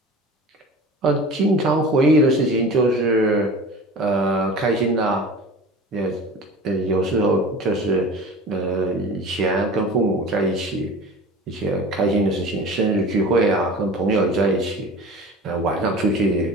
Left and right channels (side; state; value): both; normal; correlation 0.38